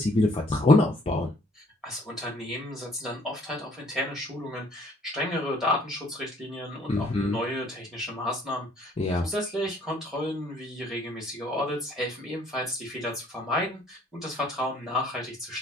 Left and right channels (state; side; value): normal; both; correlation 0.60